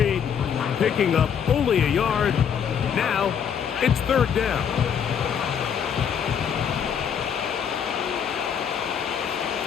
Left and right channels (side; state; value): right; quieter; 7.8 dB